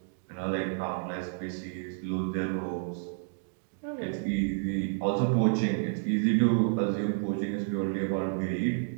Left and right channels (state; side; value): silent; left; digital silence